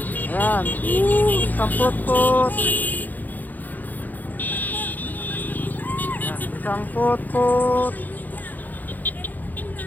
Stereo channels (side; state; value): right; late; 0.083 ms